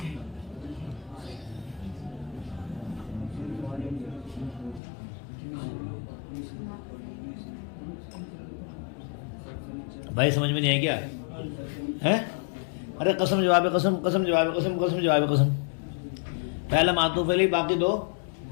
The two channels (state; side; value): drops out; right; at 4.8 s